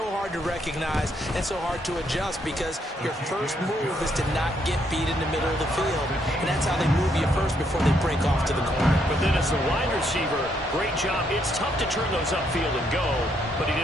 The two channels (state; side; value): normal; both; correlation 0.74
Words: hard to recognize and so hard to adjust, because your first move is to not get beat in the middle of the field, and that's how they move you first before they break off to the corner. But then as the wide receiver, great job. It's tough to turn those upfield and go, but he